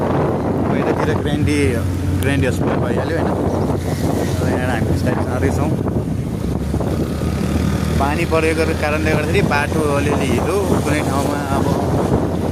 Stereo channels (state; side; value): identical; both; correlation 1.00